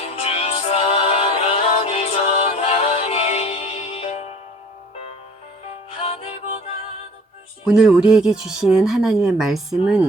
주 사랑을 전하니. 오늘 우리에게 주시는 하나님의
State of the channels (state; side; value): normal; both; correlation 0.49